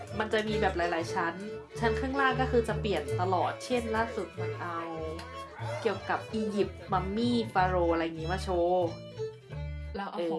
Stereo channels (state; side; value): identical; both; correlation 1.00